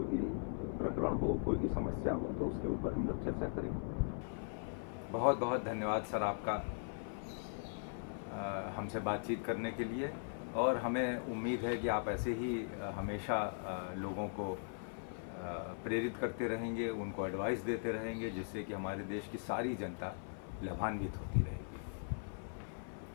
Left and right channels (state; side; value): silent; right; 51 dB below the other